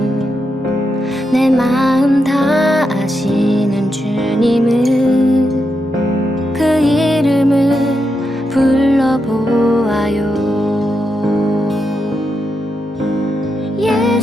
내 마음 다 아시는 주님은 그 이름을 불러보아요.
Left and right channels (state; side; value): normal; both; correlation 0.84